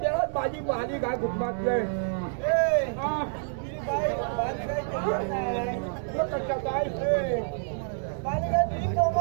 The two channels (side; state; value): left; silent; digital silence